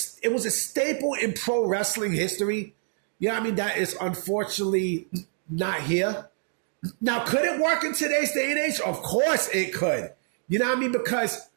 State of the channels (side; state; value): left; silent; 61 dB below the other